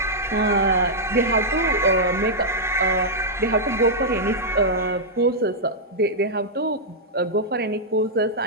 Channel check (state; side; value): normal; both; correlation -0.07